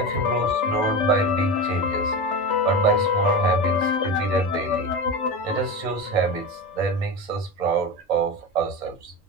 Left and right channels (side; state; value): both; normal; correlation 0.23